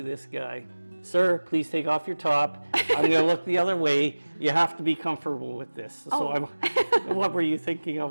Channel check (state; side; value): inverted; both; correlation -1.00